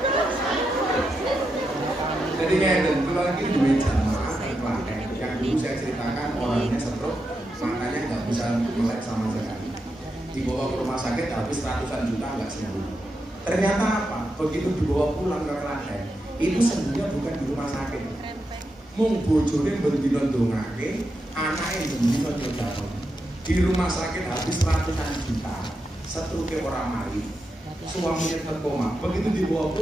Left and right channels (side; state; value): both; normal; correlation 0.86